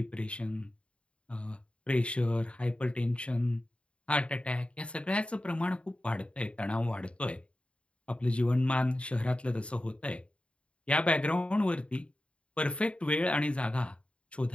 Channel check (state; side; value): late; right; 0.060 ms